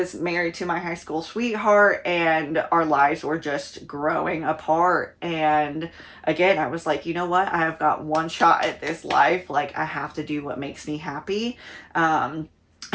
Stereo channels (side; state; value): both; identical; correlation 1.00